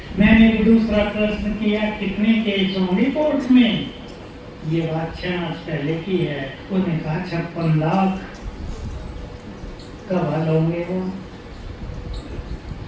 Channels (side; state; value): both; identical; correlation 1.00